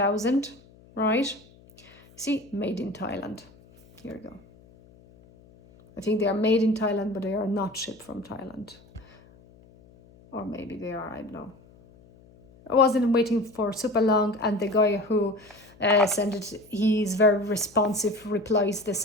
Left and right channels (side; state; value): left; noise; hum, 26 dB below the sound